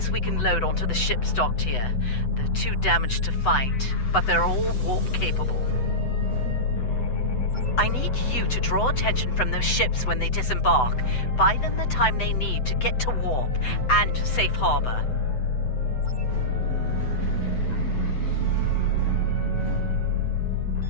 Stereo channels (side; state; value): right; late; 8.0 ms